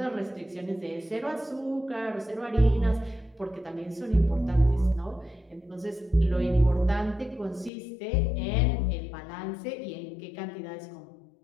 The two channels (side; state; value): right; drops out; at 7.7 s